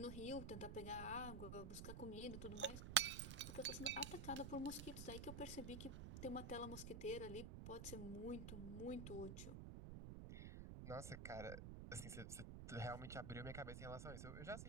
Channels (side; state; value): right; noise; rumble, 6 dB below the sound